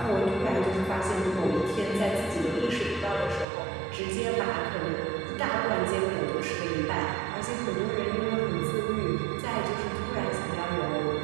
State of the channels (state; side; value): drops out; left; at 3.5 s